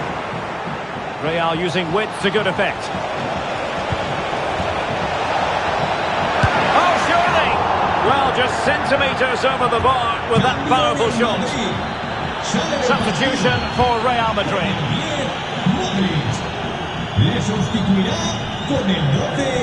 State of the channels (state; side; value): identical; both; correlation 1.00